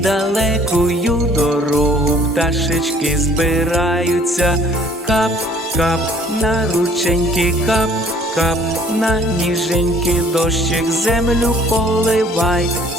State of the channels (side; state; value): both; normal; correlation 0.56